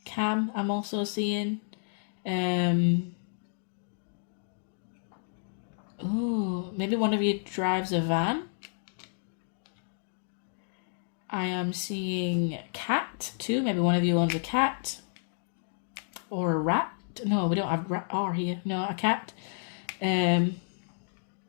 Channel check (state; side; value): silent; right; digital silence